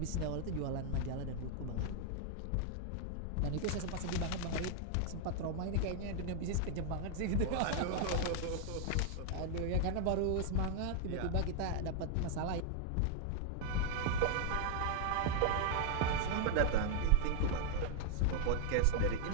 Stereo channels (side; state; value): both; different; correlation 0.00